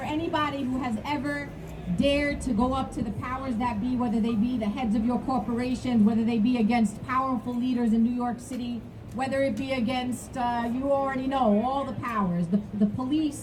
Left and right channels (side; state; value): both; identical; correlation 1.00